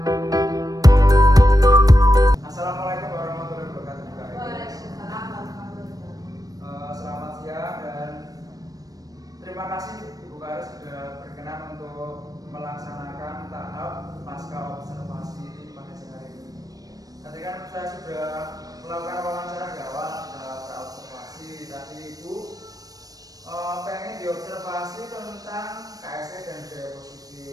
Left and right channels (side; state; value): left; late; 0.18 ms